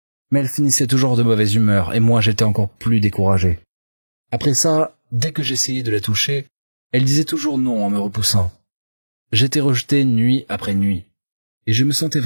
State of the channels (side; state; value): both; inverted; correlation -1.00